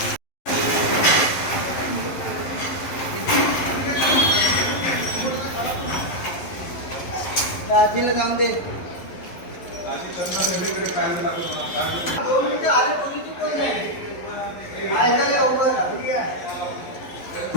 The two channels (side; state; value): right; late; 11 ms